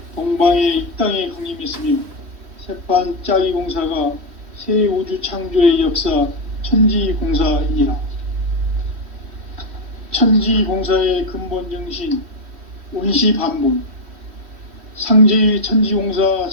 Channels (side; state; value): left; late; 3.1 ms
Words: 동방의 이 땅에 강림했으며 새판짜기 공사가 새 우주 창조의 역사 천지공사이니라. 천지공사의 근본 정신 온시반본. 상제의 천지공사